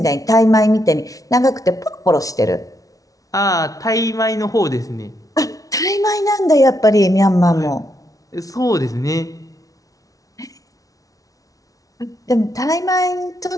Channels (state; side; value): late; right; 0.17 ms